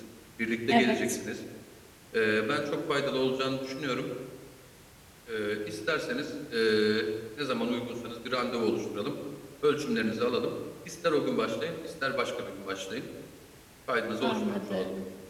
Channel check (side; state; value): both; identical; correlation 1.00